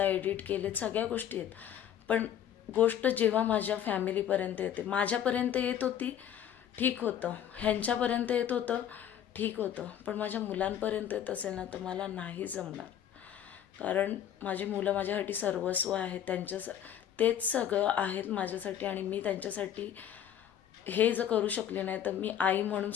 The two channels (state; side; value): quieter; right; 10.0 dB